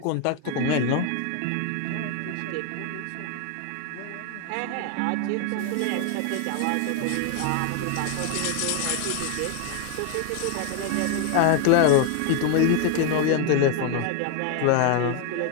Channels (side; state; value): both; different; correlation 0.01